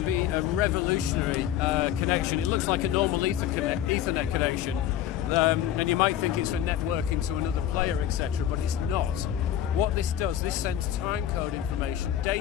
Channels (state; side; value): quieter; right; 11.2 dB